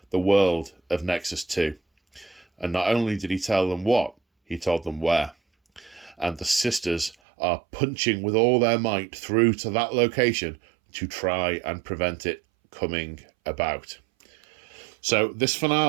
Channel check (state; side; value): drops out; left; at 7.2 s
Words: the world of Nexus 2. And not only did he tell them what, he told them where. And the sisters are punching with all their might through to that location to try and prevent it coming about. So this